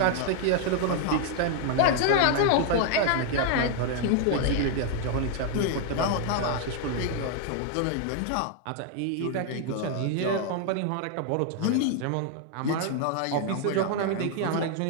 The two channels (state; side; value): different; both; correlation 0.00